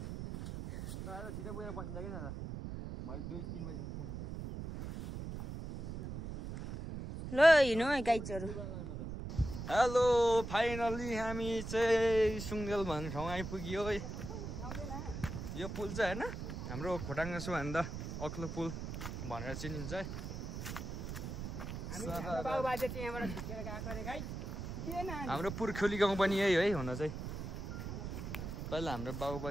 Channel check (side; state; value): right; noise; rumble, 6 dB below the sound